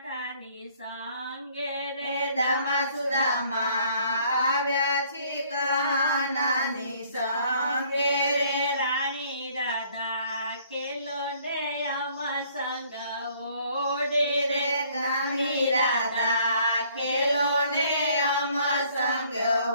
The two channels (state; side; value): inverted; both; correlation -0.60